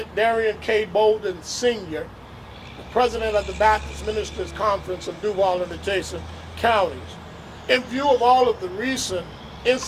Darian K. Bolden Sr., the President of the Baptist Ministers Conference of Duval and adjacent counties. In view of all of the recent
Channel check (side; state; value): both; identical; correlation 1.00